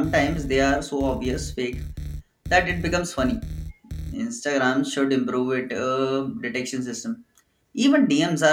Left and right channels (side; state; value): both; identical; correlation 1.00